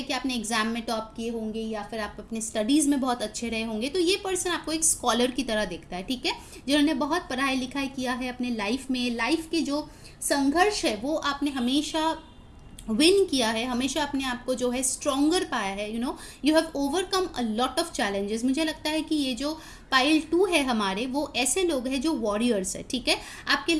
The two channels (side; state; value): both; identical; correlation 1.00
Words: कि आपने एग्जाम में टॉप किए होंगे या फिर आप अपने स्टडीज़ में बहुत अच्छे रहे होंगे, तो ये पर्सन आपको एक स्कॉलर की तरह दिखता है, ठीक है। जिन्होंने बहुत पढ़ाई लिखाई किया है अपने लाइफ में, लाइफ के जो संघर्ष है वो आपने हमेशा विन किया है, हमेशा अपने आप को जो है स्ट्रॉन्गर पाया है, you have overcome a lot of challenges. मुझे लगता है कि ये जो पाइल 2 है हमारे, वो ऐसे लोग हैं जो वॉरियर्स है, ठीक है। आपके